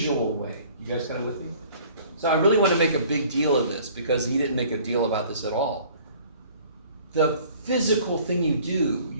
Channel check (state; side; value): inverted; both; correlation -0.52